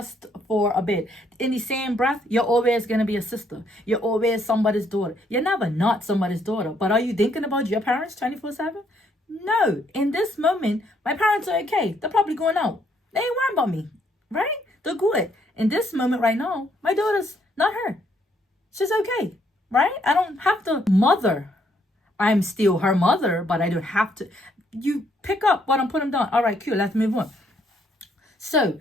for a bit. In the same breath, you're always going to be a sister. You're always somebody's daughter. You're never not somebody's daughter. But are you thinking about your parents 24/7? No. In this moment, my parents are okay. They're probably going out. They ain't worrying about me, right? They're good. In this moment right now, my daughter's not her. She's okay, right? I don't have to mother. I'm still her mother, but I don't have to. You pick up what I'm putting down. All right, cool. Let's move on. So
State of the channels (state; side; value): normal; both; correlation 0.70